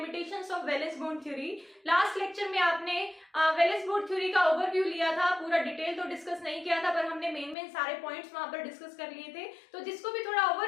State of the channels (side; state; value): right; drops out; at 7.6 s